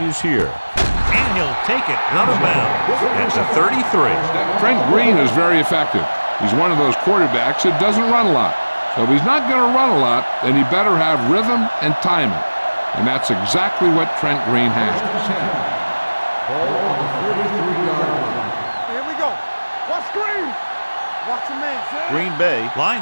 here. And he'll take it out of bounds at the 33. Trent Green is very effective. He's one of those quarterbacks that doesn't run a lot. So if he's not going to run a lot, then he better have rhythm and timing. And that's exactly what Trent Green has. Ball on the 33-yard line. Here we go. Watch Green. Watch the man. Green Bay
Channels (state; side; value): inverted; both; correlation -1.00